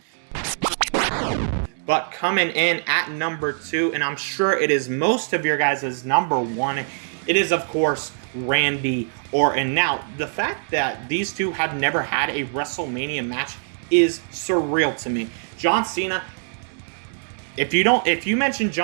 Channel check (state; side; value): silent; left; digital silence